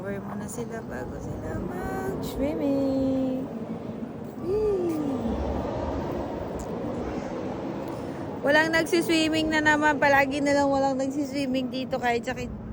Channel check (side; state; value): both; identical; correlation 1.00